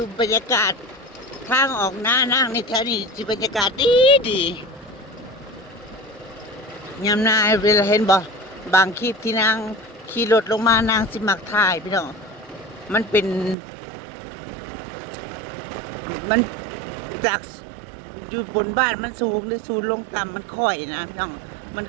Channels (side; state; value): left; drops out; at 13.6 s